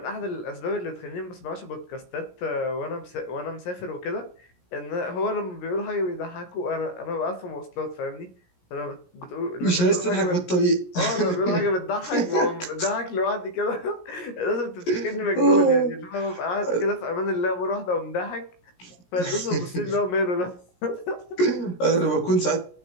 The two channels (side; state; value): right; late; 17 ms